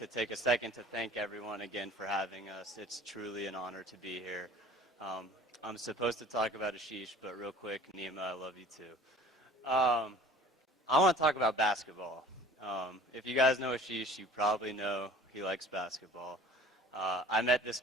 take a second to thank everyone again for having us. It's truly an honor to be here. I'm supposed to talk about aSHish, but real quick, NeeMa, I love you too. I want to talk about basketball. If you guys know aSHish, you probably know he likes basketball. I met this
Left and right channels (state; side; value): normal; both; correlation 0.47